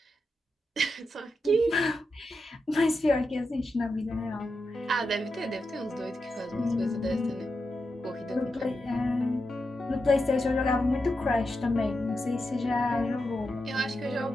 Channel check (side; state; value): both; normal; correlation 0.87